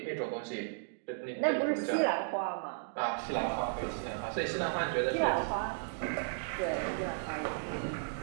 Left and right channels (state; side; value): silent; left; digital silence